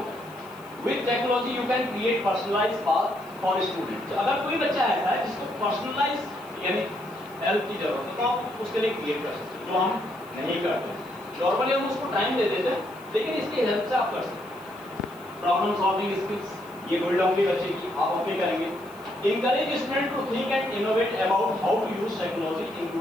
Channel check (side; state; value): left; noise; hiss, 26 dB below the sound